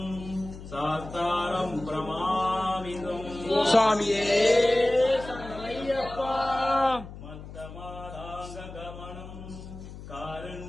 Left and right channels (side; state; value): left; noise; hum, 13 dB below the sound